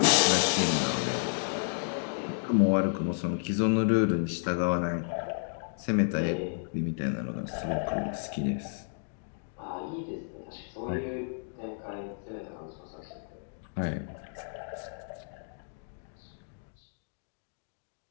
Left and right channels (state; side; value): silent; right; digital silence